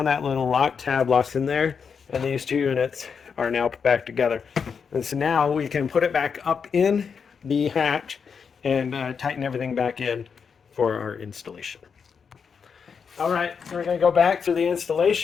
that little lock tab locks in there, and these two units are now put back together. And so now we can put it back up in the hatch and tighten everything back in for our installation. All right, so we're going to go back to the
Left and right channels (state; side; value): quieter; right; 6.2 dB